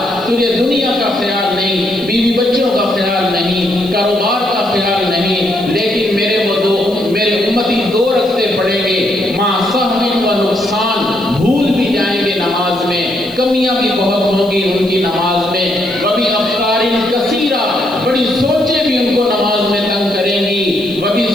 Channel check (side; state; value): left; noise; hiss, 23 dB below the sound